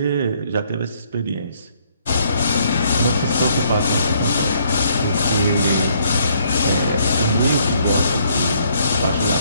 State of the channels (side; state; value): both; inverted; correlation -0.67